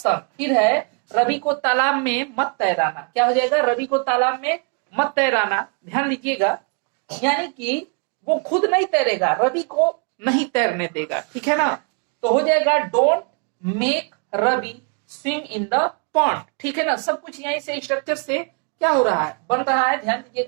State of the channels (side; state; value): left; quieter; 39.1 dB